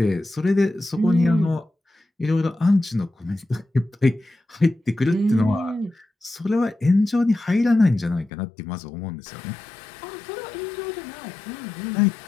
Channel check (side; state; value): right; drops out; at 8.3 s